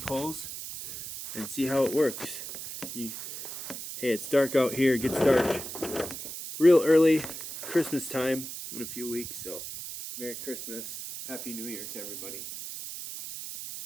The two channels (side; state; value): right; noise; hiss, 8 dB below the sound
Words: and see how it works. Hey, it's dark out here. It gets dark real early, Christmas time in a few weeks. So, Merry Christmas, Happy New Year to everybody.